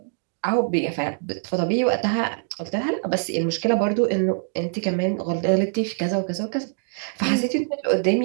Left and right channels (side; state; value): left; silent; digital silence